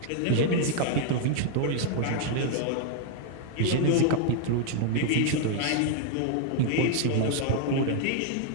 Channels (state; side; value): different; both; correlation 0.00